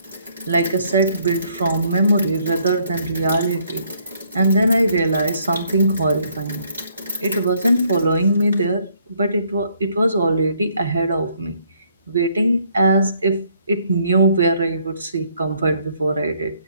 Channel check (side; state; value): both; inverted; correlation -0.68